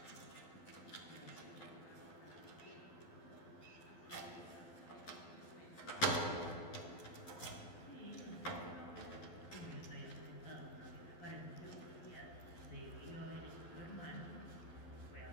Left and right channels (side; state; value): right; late; 12 ms